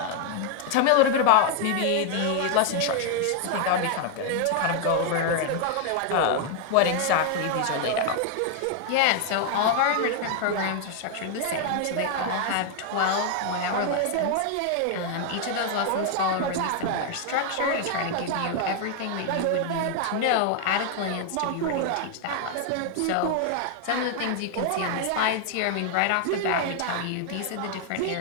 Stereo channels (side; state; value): both; different; correlation 0.00